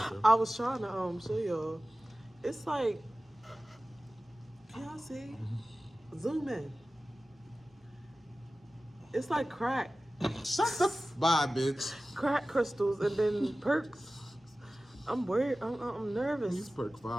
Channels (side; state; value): both; normal; correlation 0.96